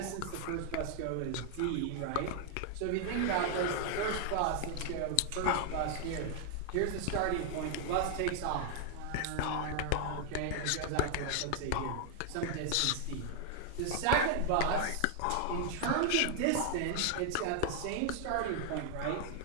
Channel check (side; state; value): both; different; correlation 0.00